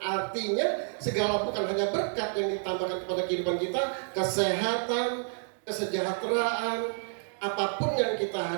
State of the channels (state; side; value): silent; left; 58 dB below the other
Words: segala bukan hanya berkat yang ditambahkan kepada kehidupan kita, kesehatan, kesejahteraan, apapun yang kita